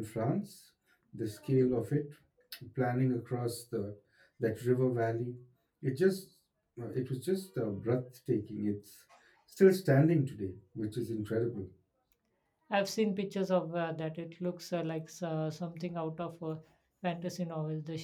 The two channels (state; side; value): identical; both; correlation 1.00